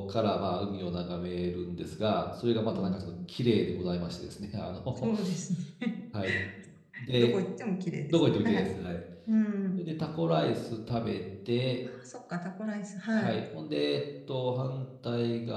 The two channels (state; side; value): identical; both; correlation 1.00